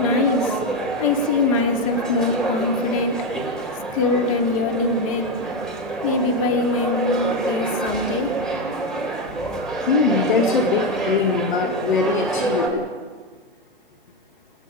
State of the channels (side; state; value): both; normal; correlation 0.11